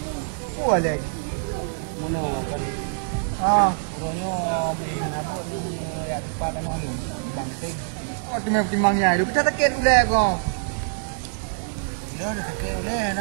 Wah lagi. Mana kan? Orangnya main apa ni? Ya lipat kan orang ni. Bangting. Oh tu memang timangnya. Lu kita takut ulah kau. Dah dah tak boleh.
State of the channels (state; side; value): silent; left; digital silence